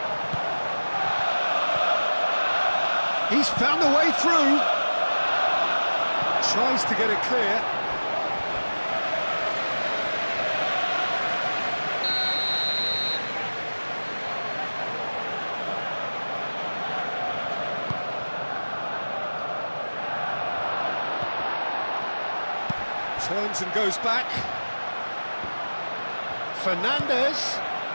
He's found a way through. Tries to get it clear. Turns and goes back. Fernandez.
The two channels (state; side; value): inverted; both; correlation -1.00